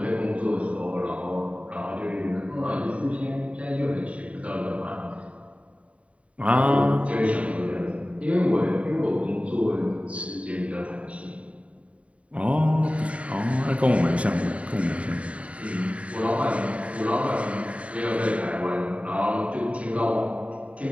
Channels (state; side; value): late; left; 0.065 ms